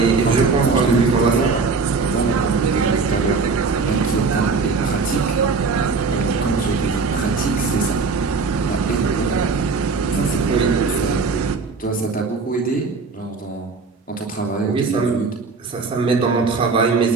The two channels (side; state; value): left; quieter; 4.5 dB